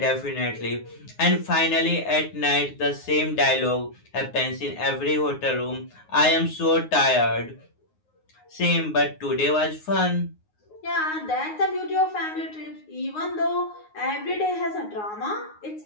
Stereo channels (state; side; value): late; right; 9.5 ms